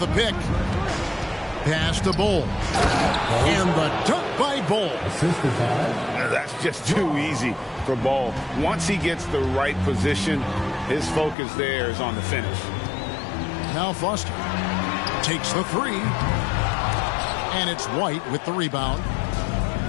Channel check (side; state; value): right; drops out; at 11.4 s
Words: pick. Pass to Bull. And the dunk by Bull. Assisted by. That's just too easy for Ball. Once he gets the right position, his focus there is on the finish. Now Foster takes the 3. And it's White with the rebound.